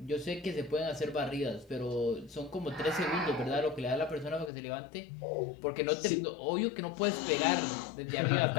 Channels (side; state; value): right; drops out; at 4.5 s